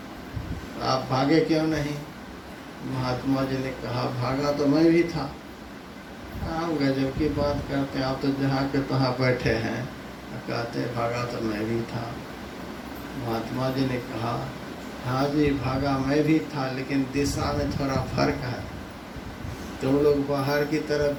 आप भागे क्यों नहीं? महात्मा जी ने कहा, भागा तो मैं भी था। आप गजब की बात करते, आप तो जहाँ के तहाँ बैठे हैं, कहते भागा तो मैं भी था। महात्मा जी ने कहा, हाँ जी भागा मैं भी था, लेकिन दिशा में थोड़ा फर्क है। तुम लोग बाहर की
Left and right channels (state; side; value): identical; both; correlation 1.00